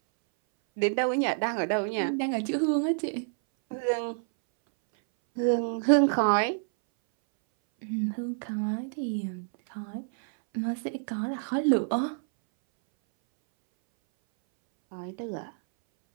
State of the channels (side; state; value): left; silent; 59 dB below the other